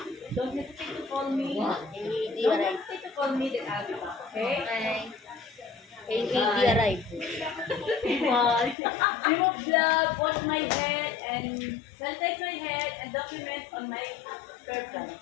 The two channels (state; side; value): drops out; right; at 8.8 s